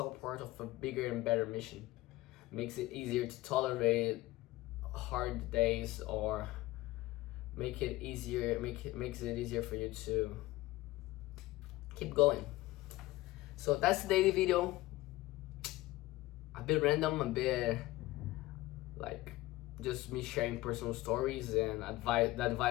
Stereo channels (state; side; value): quieter; right; 18.0 dB